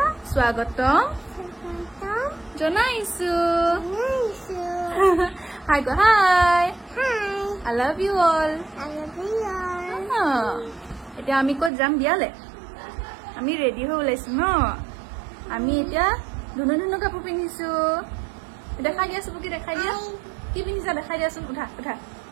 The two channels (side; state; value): left; drops out; at 11.7 s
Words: জনাইছো Hi, go hi. I love you all. এতিয়া আমি কত যাম বিয়ালে আমি ৰেডি হৈ ওলাইছো ন আমি এতিয়া ধুনু কাপোৰ পিন্ধিছো দেখাই দিয়াছো কি দেখাই দিয়া কি পিন্ধিছা দেখাই দিয়াছো উঠা